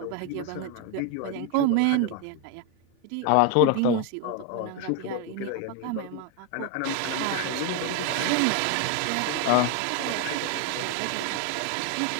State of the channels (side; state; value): both; different; correlation 0.01